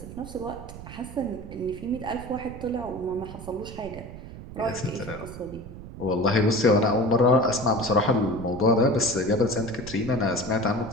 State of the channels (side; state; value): right; noise; rumble, 13 dB below the sound